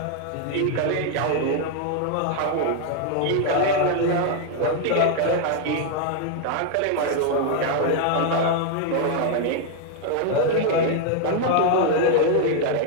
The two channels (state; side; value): different; both; correlation 0.00